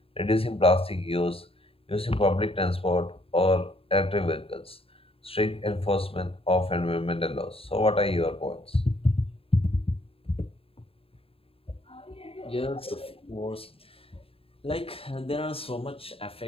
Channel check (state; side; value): late; right; 0.27 ms